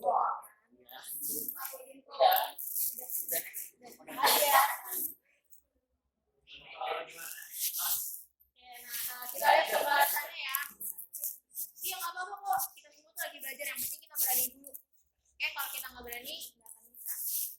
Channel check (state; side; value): identical; both; correlation 1.00